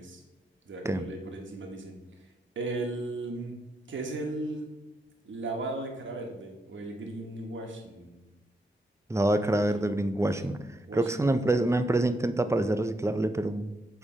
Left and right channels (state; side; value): normal; both; correlation 0.80